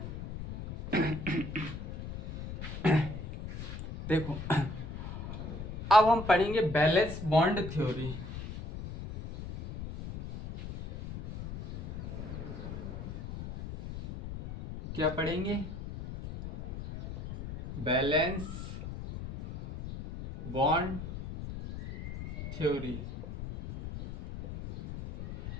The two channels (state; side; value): noise; left; rumble, 8 dB below the sound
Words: देखो अब हम पढ़ेंगे बैलेंस बॉन्ड थ्योरी। क्या पढ़ेंगे, valence bond theory.